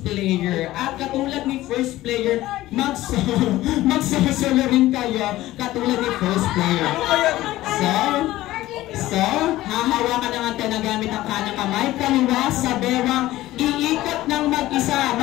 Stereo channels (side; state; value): right; quieter; 16.1 dB